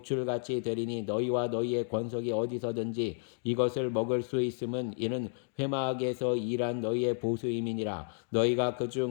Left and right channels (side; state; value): right; silent; 57 dB below the other